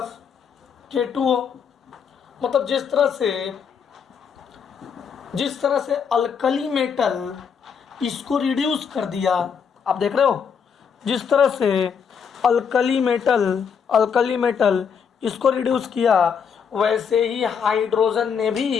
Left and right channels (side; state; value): right; quieter; 6.8 dB